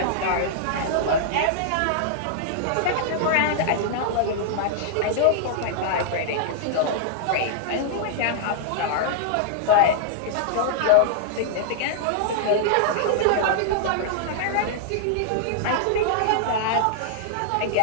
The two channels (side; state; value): both; different; correlation -0.01